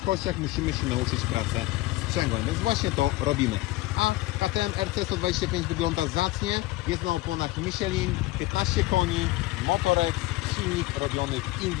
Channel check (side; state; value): right; quieter; 18.7 dB